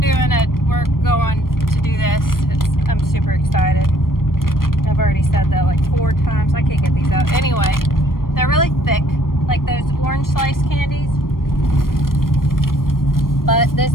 it. We're going to do this. I'm super excited. I've already said that like 4 times. I can't get these out. Anyway, they're really thick, like those orange slice candies. But this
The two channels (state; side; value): late; right; 0.91 ms